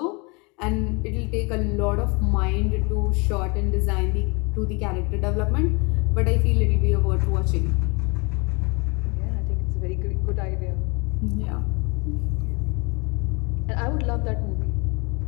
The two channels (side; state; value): right; quieter; 29.5 dB